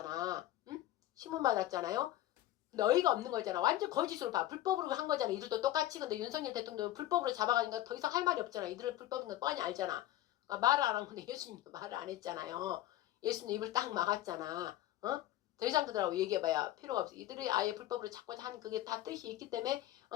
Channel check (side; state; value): right; quieter; 14.1 dB